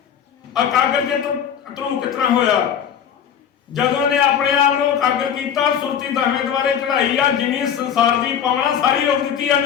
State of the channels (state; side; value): quieter; right; 8.5 dB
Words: ਅਕਾਗਰ ਚ ਧਰੂ ਕਿਸ ਤਰ੍ਹਾਂ ਹੋਇਆ। ਜਦੋਂ ਨੇ ਆਪਣੇ ਆਪ ਨੂੰ ਇਕਾਗਰ ਕੀਤਾ, ਸੁਰਤੀ 10ਵੇਂ ਦੁਆਰੇ ਚੜਾਈ ਆ। ਜਿਵੇਂ ਸੰਸਾਰ ਦੀ ਪਾਵਨਾ ਸਾਰੀ ਰੋਕ ਦਿੱਤੀ